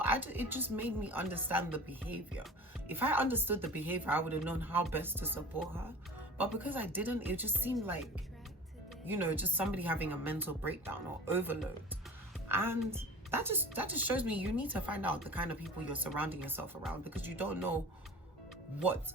it just made me understand the behavior. If I understood the behavior, I would have known how best to support her. But because I didn't, it just seemed like, you know, just somebody having a mental breakdown or overload. And that just shows me you need to find out the kind of people you're surrounding yourself around, because you don't know what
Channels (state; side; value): normal; both; correlation 0.39